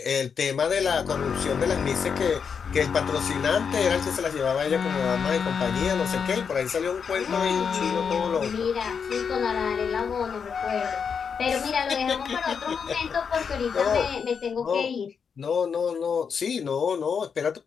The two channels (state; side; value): quieter; right; 6.4 dB